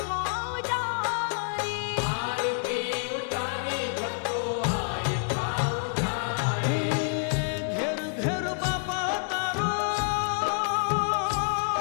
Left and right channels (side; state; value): right; silent; digital silence